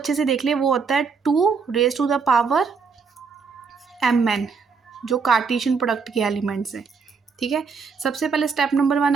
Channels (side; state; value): left; quieter; 5.4 dB